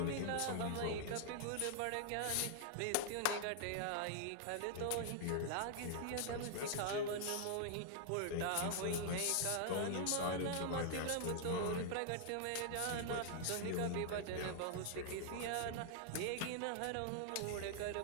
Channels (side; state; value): both; different; correlation -0.01